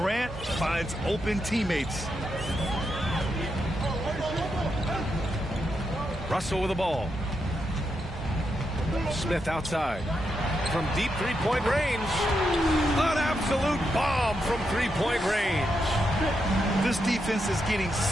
finds open teammates. Russell with the ball. Smith outside. From deep three-point range. An absolute bomb from three-point range. This defense is getting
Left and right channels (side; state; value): both; normal; correlation 0.83